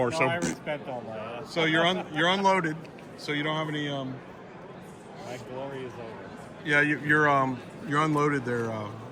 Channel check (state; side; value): identical; both; correlation 1.00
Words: No, So I respect all my. so you're unloaded. So you don't have any. My glory is over. Yeah, you're unloaded there.